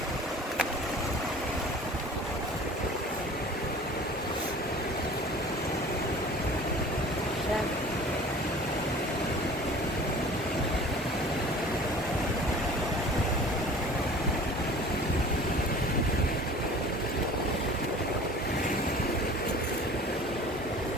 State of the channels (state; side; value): normal; both; correlation 0.44